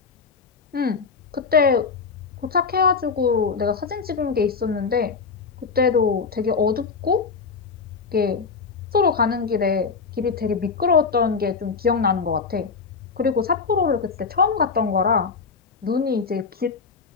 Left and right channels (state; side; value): quieter; right; 5.1 dB